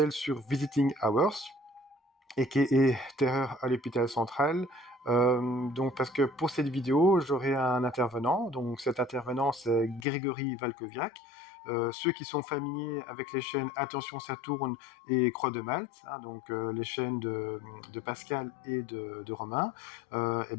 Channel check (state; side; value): drops out; right; at 10.1 s